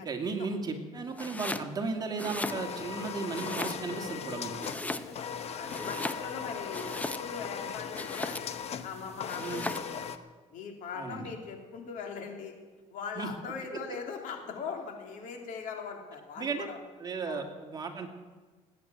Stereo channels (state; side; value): normal; both; correlation 0.35